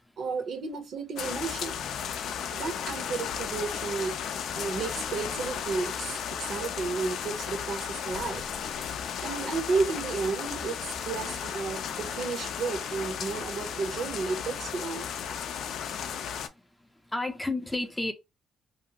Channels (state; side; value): normal; both; correlation 0.69